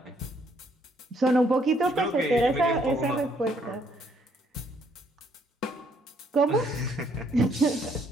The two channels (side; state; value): both; normal; correlation 0.68